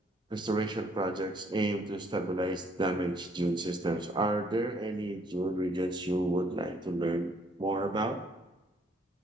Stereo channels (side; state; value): both; normal; correlation 0.64